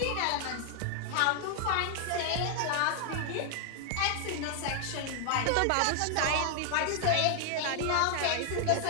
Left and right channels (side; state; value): both; different; correlation 0.00